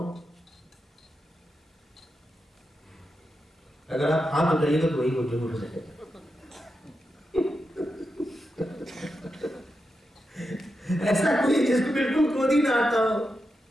अगर आप हाथ उठाइएगा तो वही झूठ हो जाएगा। ऐसा कोई जिसको बिल्कुल क्रोध ही ना आता हो?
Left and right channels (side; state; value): both; normal; correlation 0.88